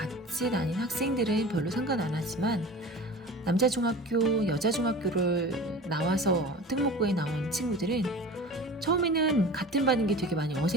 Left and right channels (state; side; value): normal; both; correlation 0.37